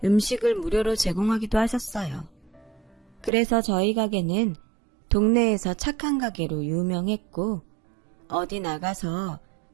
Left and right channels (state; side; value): drops out; left; at 3.3 s